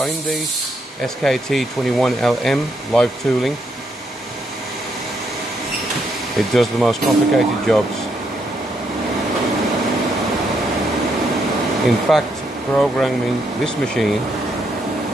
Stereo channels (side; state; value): both; normal; correlation 0.76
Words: SKT21LM live tooling. It does the most complicated jobs. In fact, programming this machine,